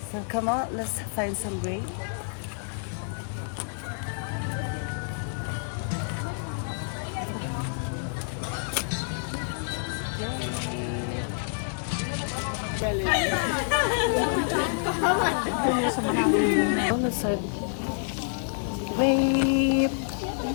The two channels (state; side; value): silent; right; digital silence